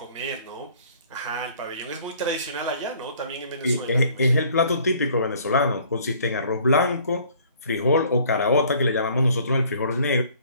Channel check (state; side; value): inverted; both; correlation -0.56